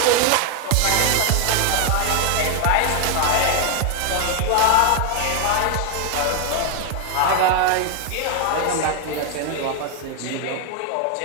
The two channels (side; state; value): both; different; correlation 0.00